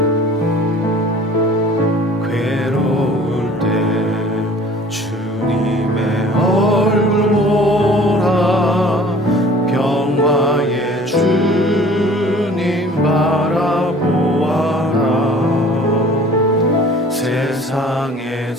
괴로울 때 주님의 얼굴 보라, 평화의 주님 바라보아라.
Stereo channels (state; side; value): normal; both; correlation 0.49